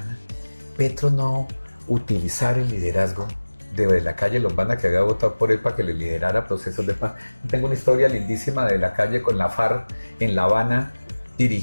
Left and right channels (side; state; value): both; inverted; correlation -1.00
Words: Petro no utilizar el liderazgo de la calle Lombana, que había votado por él para que le liderara procesos de paz. Tengo una historia lindísima de la calle con la FARC en La Habana,